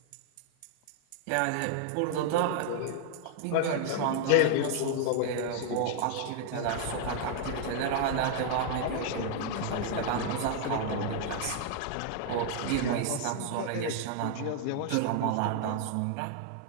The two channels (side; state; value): both; different; correlation 0.00